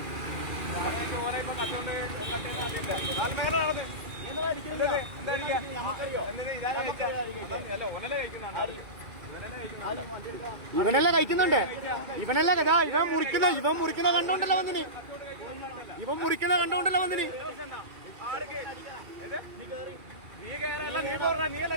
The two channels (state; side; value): late; left; 2.4 ms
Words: ഇവനല്ല കഴിക്കുന്നുണ്ട്. ഇവനല്ല കഥാ ഇവൻ മുറിക്കുന്ന കണ്ടോണ്ടല്ലോ വന്നിന്. ഇവൻ മുറിക്കുന്ന കണ്ടോണ്ടല്ലോ വന്നിന്.